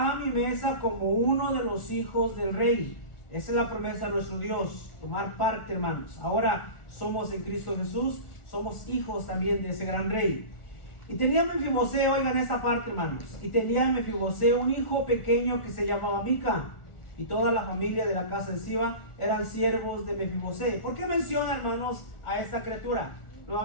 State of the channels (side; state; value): right; late; 1.4 ms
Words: a mi mesa como uno de los hijos del rey. Esa es la promesa de nuestro Dios, tomar parte, hermanos. Ahora somos en Cristo Jesús, somos hijos también de ese gran rey. Y tenía Mefibosé, oigan esta parte, hermanos, y tenía Mefibosé un hijo pequeño que se llamaba Mica, y toda la familia de la casa de Siba eran siervos de Mefibosé. ¿Por qué menciona, hermanos, a esta criatura?